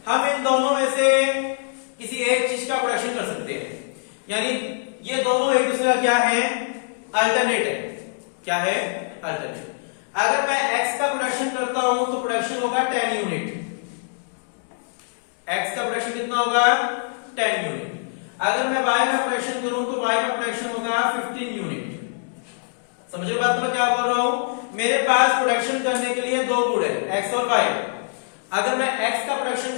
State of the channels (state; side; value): silent; right; digital silence